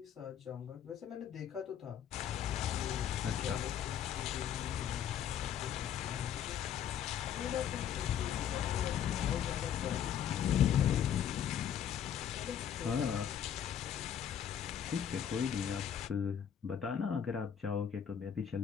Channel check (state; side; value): quieter; right; 9.1 dB